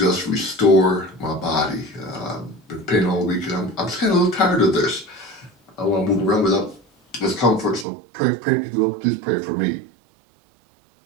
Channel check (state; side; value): drops out; left; at 7.9 s